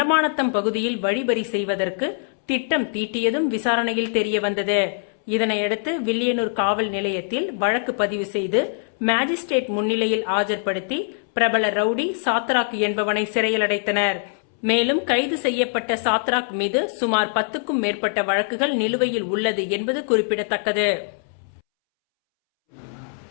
பகுதியில் வழிபறி செய்வதற்கு திட்டம் தீட்டியதும் விசாரணையில் தெரிய வந்தது. இதனையடுத்து வில்லியனூர் காவல் நிலையத்தில் வழக்கு பதிவு செய்து மேஜிஸ்ட்ரேட் முன்னிலையில் ஆஜர்படுத்தி பிரபல ரவுடி சாத்ராக் என்பவனை சிறையில் அடைத்தனர். மேலும் கைது செய்யப்பட்ட சாத்ராக் மீது சுமார் 10க்கும் மேற்பட்ட வழக்குகள் நிலுவையில் உள்ளது என்பது குறிப்பிடத்தக்கது.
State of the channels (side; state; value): right; silent; 64 dB below the other